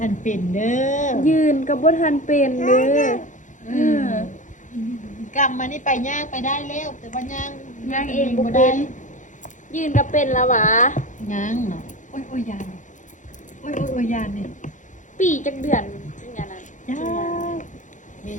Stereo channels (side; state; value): right; late; 0.37 ms